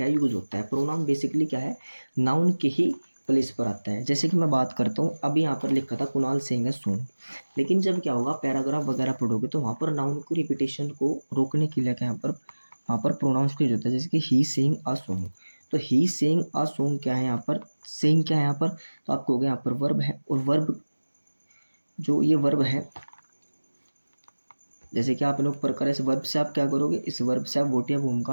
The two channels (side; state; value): both; inverted; correlation -1.00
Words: यूज होता है। प्रोनाउन बेसिकली नाउन के ही प्लेस पर आता है। जैसे कि मैं बात करता हूँ, अभी यहाँ पर लिखा था कुणाल सिंह है सोंग, लेकिन जब क्या होगा, पैराग्राफ वगैरह पढ़ोगे तो वहाँ पर नाउन की रिपीटेशन को रोकने के लिए वहाँ पर प्रोनाउंस का यूज होता है। जैसे कि ही सिंग अ सॉन्ग। तो ही सिंग अ सॉन्ग क्या है यहाँ पर? सिंग क्या है यहाँ पर? तो आप कहोगे यहाँ पर वर्ब है, और वर्ब जो ये वर्ब है, जैसे कि आप लोग प्रकार इस वर्ब से आप क्या करोगे? इस वर्ब से आप वोट या वोम का